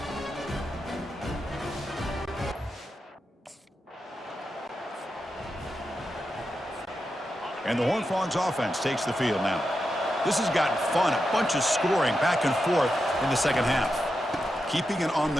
And the Horned Frogs offense takes the field now. This has gotten fun, a bunch of scoring back and forth in the second half. Keeping it on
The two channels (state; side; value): normal; both; correlation 0.88